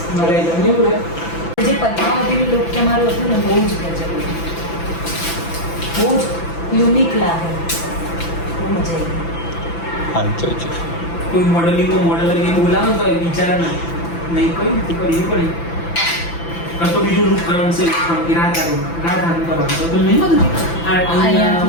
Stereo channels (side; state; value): right; late; 5.9 ms